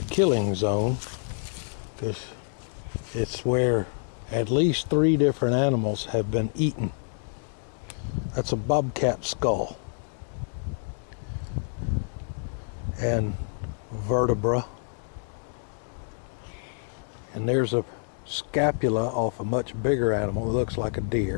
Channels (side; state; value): right; silent; digital silence